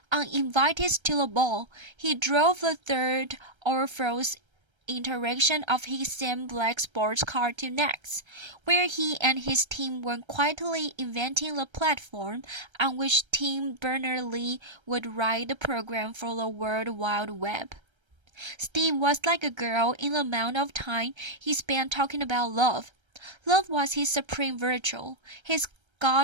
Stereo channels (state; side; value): late; left; 1.3 ms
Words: Uninvited to the ball, he drove the third Orpheus iteration of his same black sports car to Next, where he and his team were quietly inventing the platform on which Tim Berners-Lee would write the program for the World Wide Web. Steve was like a girl in the amount of time he spent talking about love. Love was his supreme virtue, his